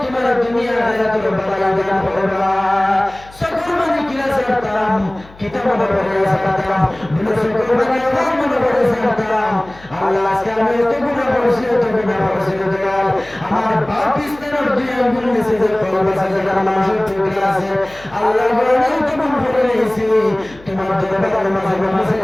তোমার দুনিয়া আখিরাতের বালাই দান করবা কুরবানি কিলা ছাড়তাম কিতাবের পড়ে ছাড়তাম বলে কুরবানি আমার মনে পড়ে ছাড়তাম আল্লাহ আজকে আমি এত গুনাহ করেছি দয়াল আমার বাপ ইস্তার দুই আঙ্গুল নিচে যে কলবা সাজা মানুষের টুকরা আছে আল্লাহ বলেন তুমি করে নিয়েছি তোমার দরবারের মাঝে মাঝে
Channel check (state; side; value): noise; left; hum, 22 dB below the sound